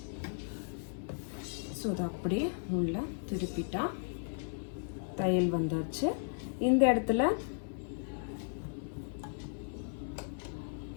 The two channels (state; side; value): silent; right; 54 dB below the other